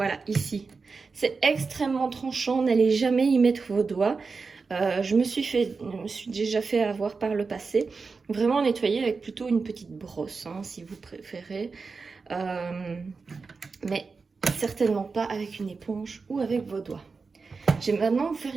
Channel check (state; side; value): quieter; left; 4.5 dB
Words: ici. C'est extrêmement tranchant, n'allez jamais y mettre vos doigts. Je me suis déjà fait avoir par le passé. Vraiment nettoyer avec plutôt une petite brosse, hein, si vous préférez. Mais certainement pas avec une éponge ou avec vos doigts. Je vais maintenant vous faire